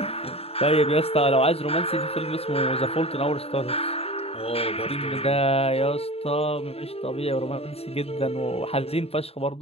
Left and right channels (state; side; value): late; right; 0.29 ms